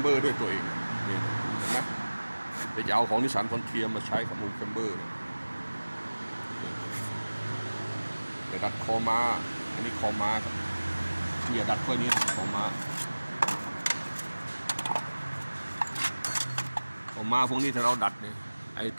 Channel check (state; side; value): inverted; both; correlation -1.00